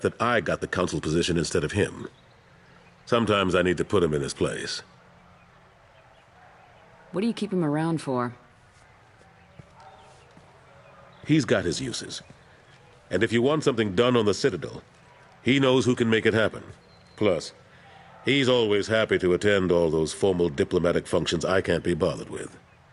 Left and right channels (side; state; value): both; identical; correlation 1.00